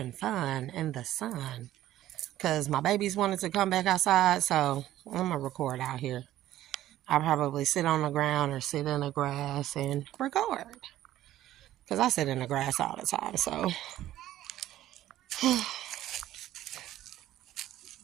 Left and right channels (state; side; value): quieter; left; 13.7 dB